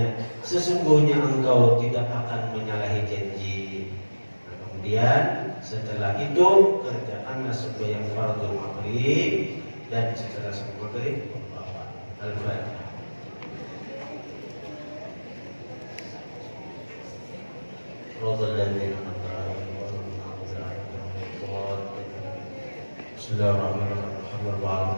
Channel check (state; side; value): inverted; both; correlation -1.00